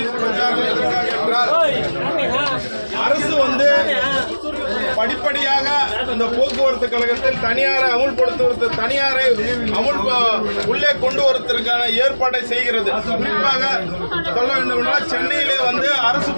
பிரச்சாரம் எதற்காக என்றால் அரசு வந்து படிப்படியாக இந்த போக்குவரத்து கழகத்தில் தனியாரை உள்ளே கொண்டு வருவதற்கான ஏற்பாட்டை செய்கிறது. குறிப்பாக சொல்ல வேண்டும் என்றால் சென்னையிலே வந்து அரசு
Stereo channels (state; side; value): inverted; both; correlation -1.00